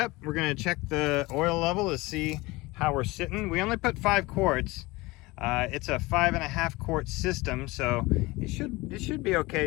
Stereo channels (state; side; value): quieter; right; 21.9 dB